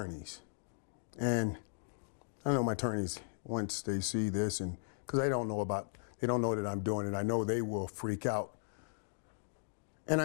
And I know my attorneys, once they see this, and because they don't know that I'm doing it, I know they will freak out. And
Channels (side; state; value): right; silent; digital silence